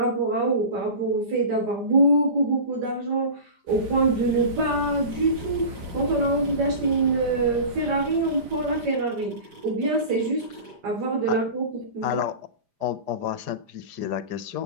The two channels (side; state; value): left; late; 4.9 ms